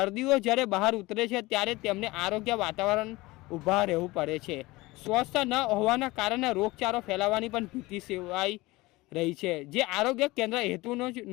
જ્યારે બહાર ઉતરે છે ત્યારે તેમને આરોગ્ય વાતાવરણ ઊભા રહેવું પડે છે। સ્વચ્છતા ન હોવાના કારણે રોગચાળો ફેલાવાની પણ ભીતિ સેવાઈ રહી છે, જે આરોગ્ય કેન્દ્ર હેતુનો જ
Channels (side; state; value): right; quieter; 20.9 dB